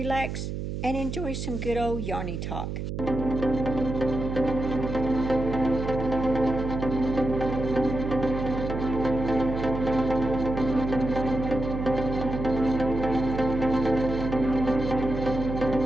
and enjoy some good old yarny talk.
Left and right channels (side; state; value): right; noise; hum, 5 dB below the sound